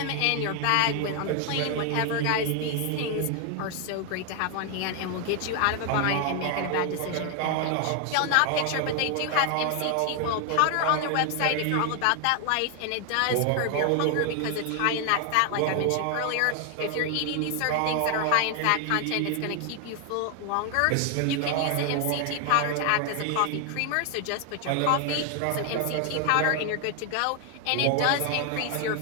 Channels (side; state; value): both; different; correlation 0.00